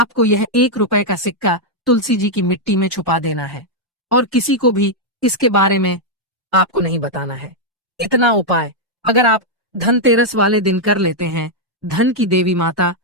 यह 1 रुपए का सिक्का तुलसी जी की मिट्टी में छुपा देना है। और किसी को भी इसके बारे में आपको नहीं बताना है। इतना उपाय अगर आप धनतेरस वाले दिन कर लेते हैं, धन की देवी माता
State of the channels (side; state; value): both; normal; correlation -0.02